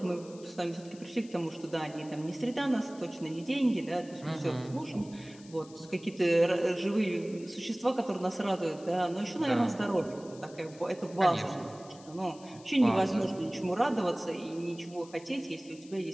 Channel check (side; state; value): left; noise; hiss, 22 dB below the sound